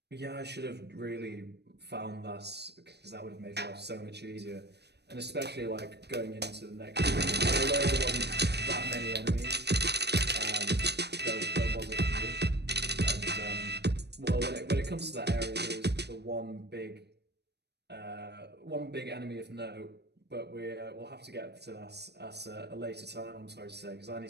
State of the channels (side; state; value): left; late; 0.49 ms